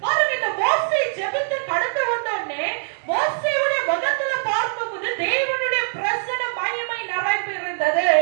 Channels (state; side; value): silent; left; digital silence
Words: பாருங்க, இந்த மோசே ஜெபித்து கடந்து வந்தோடனே மோசேயுடைய முகத்துல பார்க்கும்போது தேவனுடைய பிரசன்ன மகிமை நிறைந்து இருந்தது.